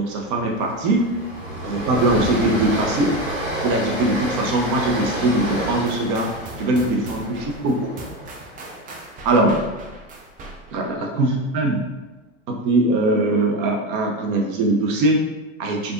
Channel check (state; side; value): normal; both; correlation 0.18